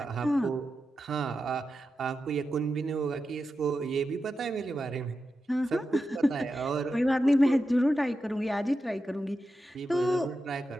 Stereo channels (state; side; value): normal; both; correlation 0.90